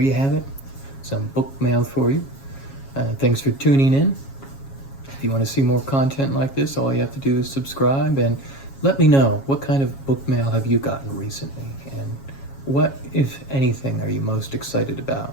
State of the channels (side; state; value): right; late; 7.3 ms